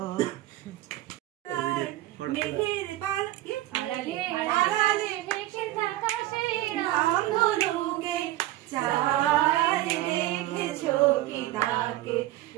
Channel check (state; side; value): quieter; left; 15.7 dB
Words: মেঘের পালকে আড়ালে আড়ালে ভেসে থাকা সেই রামধনুকে চাঁদ দেখেছো কি তাকে